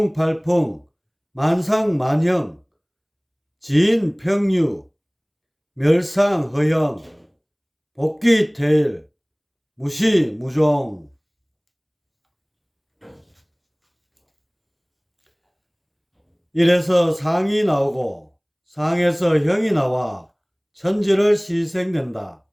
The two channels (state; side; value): identical; both; correlation 1.00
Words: 만상만형 지인평유 멸상허영 복귀태일 무시무종. 이래서 상이 나오고 상에서 형이 나와 천지를 시생된다.